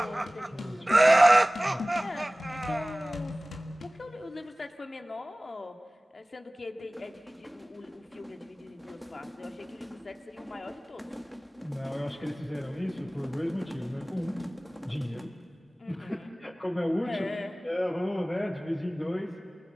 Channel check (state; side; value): normal; both; correlation 0.98